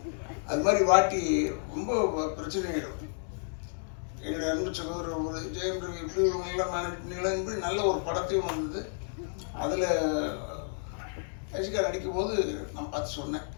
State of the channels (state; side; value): silent; right; digital silence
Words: அது மாதிரி வாட்டி ரொம்ப பிரச்சனை ஆகிடும். என்னுடைய அன்பு சகோதரர் ஒரு ஜெயம் ரவி எப்படி இவங்கெல்லாம் மேனேஜ் பண்ணிக்கலாம் இப்படி நல்ல ஒரு படத்தையும் வந்தது. அதில் ரசிகர் அடிக்கும்போது நான் பார்த்து சொன்னேன்,